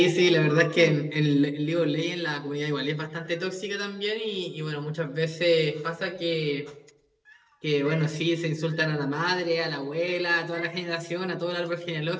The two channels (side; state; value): both; identical; correlation 1.00